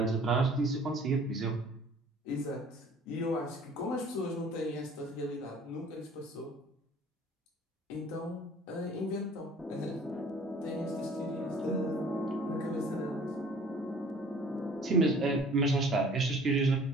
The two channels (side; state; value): both; normal; correlation 0.51